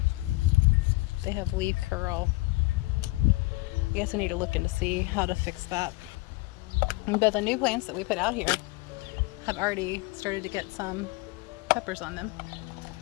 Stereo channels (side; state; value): right; quieter; 22.2 dB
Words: They have leaf curl. I guess I need to look in to see how to fix that. But the new plants that we put out here have already started to get some peppers on them.